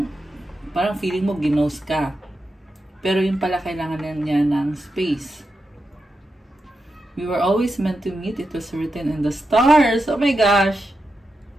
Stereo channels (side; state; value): both; normal; correlation 0.88